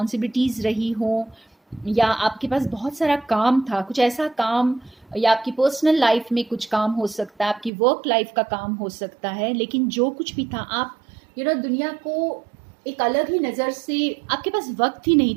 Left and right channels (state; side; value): drops out; left; at 7.7 s